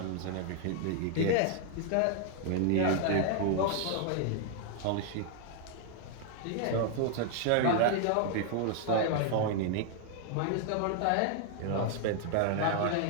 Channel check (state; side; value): different; both; correlation 0.00